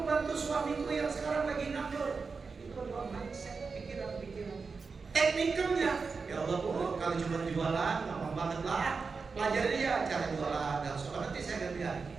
bantu suamiku yang sekarang lagi nganggur. Itu adalah mindset, pikiran-pikiran. Teknikalnya, ya Allah Bu, kalau cuma jualan gampang banget lah. Pelajari ya cara jualan, dan soal nanti saya akan lihat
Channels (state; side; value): quieter; left; 4.8 dB